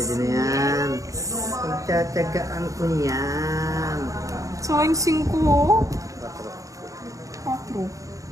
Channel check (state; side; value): late; left; 0.16 ms